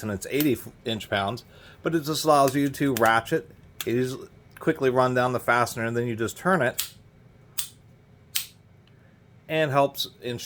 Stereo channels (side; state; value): both; identical; correlation 1.00